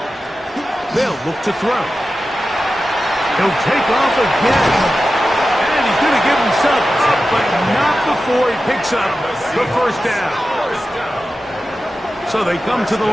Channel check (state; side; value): normal; both; correlation 0.93